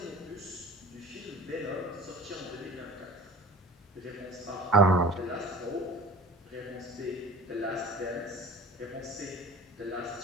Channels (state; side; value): normal; both; correlation 0.39